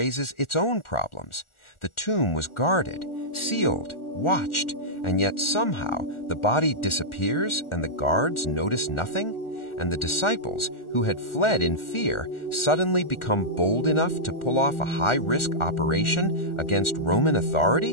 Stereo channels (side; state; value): right; late; 1.4 ms